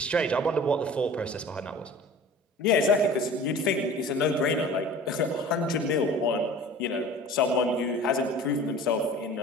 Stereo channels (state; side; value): normal; both; correlation 0.42